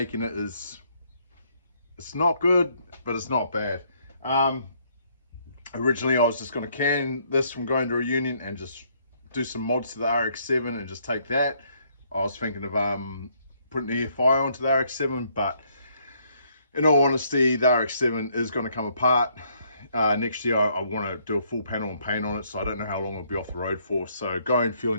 it is, it's not good, but it's not bad. Originally I was just going to can this from going to a union and just do some mods to the RX-7 and just take that. I was thinking of putting the air fire onto the RX-7, but in all honesty, the RX-7 is going to come apart. Next year I want to do a full panel and paint on it, so I don't know how long it'll be off the road for. So going fuel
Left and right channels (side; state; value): both; inverted; correlation -0.68